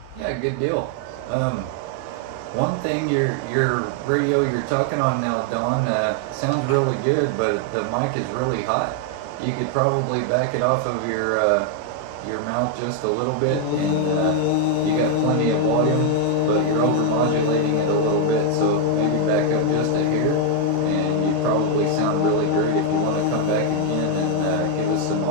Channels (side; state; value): both; different; correlation 0.00